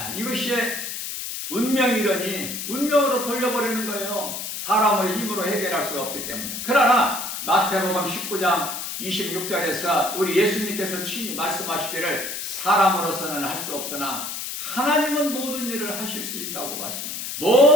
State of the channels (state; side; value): noise; left; hiss, 6 dB below the sound